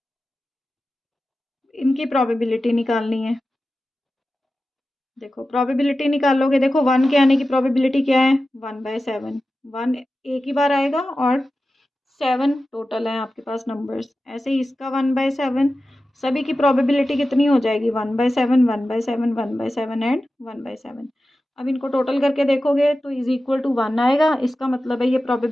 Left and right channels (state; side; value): normal; both; correlation 0.93